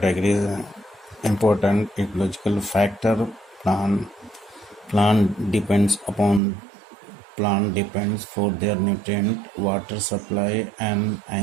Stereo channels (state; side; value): drops out; left; at 6.4 s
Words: important ecological factor. Plant plant depends for their nutrient, water supply, and